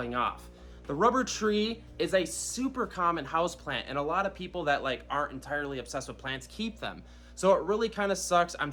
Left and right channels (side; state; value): both; identical; correlation 1.00